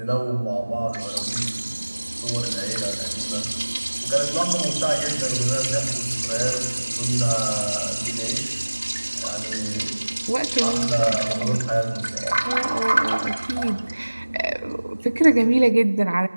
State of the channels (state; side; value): inverted; both; correlation -1.00